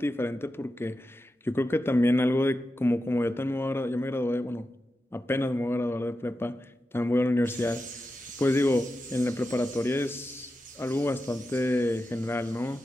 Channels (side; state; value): both; normal; correlation 0.90